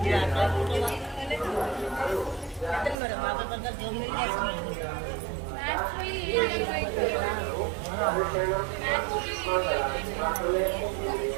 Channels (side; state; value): left; drops out; at 3.0 s